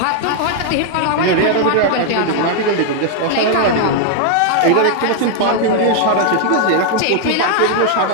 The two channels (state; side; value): different; both; correlation 0.00